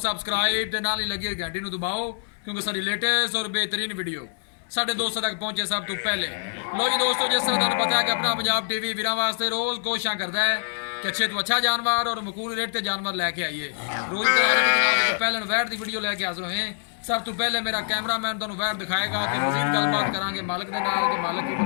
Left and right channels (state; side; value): silent; right; digital silence